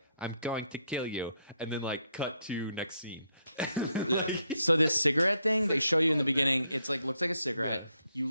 I'm going to kill you. And then, like, cut to next scene. Yeah. So this cigarette thing, they show you in the beginning, it's like, looks like a cigarette. You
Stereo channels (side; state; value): both; inverted; correlation -0.76